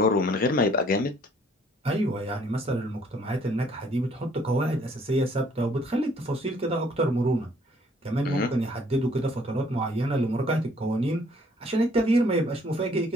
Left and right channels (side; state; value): both; normal; correlation 0.61